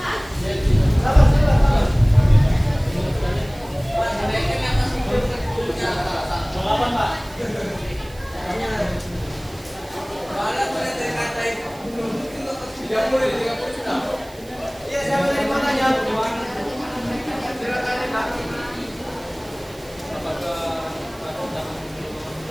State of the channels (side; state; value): right; noise; hiss, 23 dB below the sound